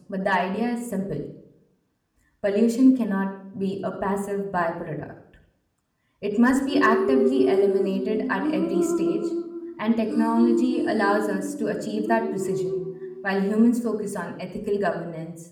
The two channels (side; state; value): both; identical; correlation 1.00